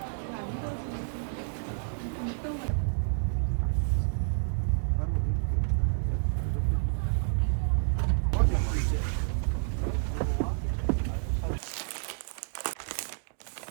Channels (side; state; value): left; silent; digital silence